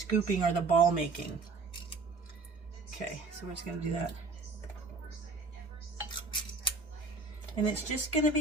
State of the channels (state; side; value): quieter; left; 3.9 dB